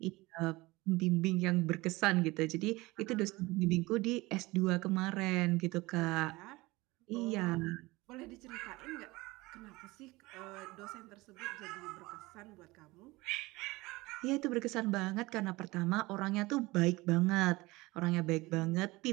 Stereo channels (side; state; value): left; quieter; 21.4 dB